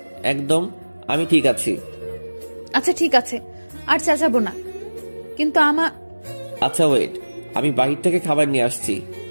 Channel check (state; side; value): inverted; both; correlation -1.00